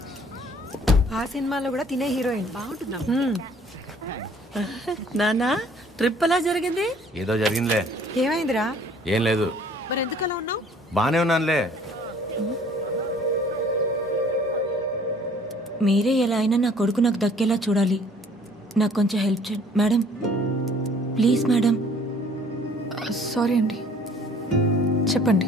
ఆ సినిమాలో కూడా తినే హీరోయిన్ బాగుంటుందా? నానా ట్రిప్ ఎలా జరిగింది? ఏదో జరిగిందిలే. ఏమైందిరా? ఏం లేదు. మరి ఎందుకు అలా ఉన్నావు? బానే ఉన్నానులే. మీరే ఎలా అయినా నా కొడుకు నాకు దక్కేలా చూడాలి. నాకు కొంచెం హెల్ప్ చేయండి మేడం, ప్లీజ్ మేడం. సారీ అండి,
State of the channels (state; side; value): normal; both; correlation 0.56